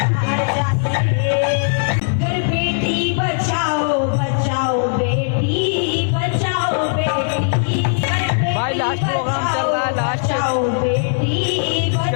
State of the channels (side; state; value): right; silent; digital silence